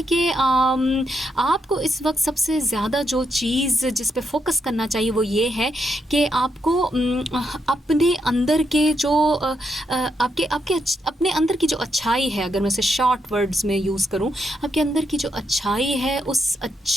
कि आपको इस वक्त सबसे ज़्यादा जो चीज़ जिस पे फोकस करना चाहिए वो ये है कि आपको अपने अंदर के जो आपके अपने अंदर की जो अच्छाई है, अगर मैं इसे शॉर्ट वर्ड्स में यूज़ करूं, आपके अंदर की जो अच्छाई है उस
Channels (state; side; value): normal; both; correlation 0.80